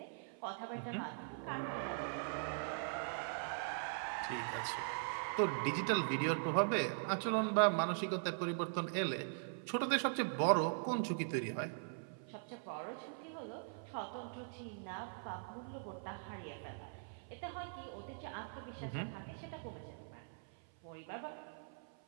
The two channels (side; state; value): left; silent; 50 dB below the other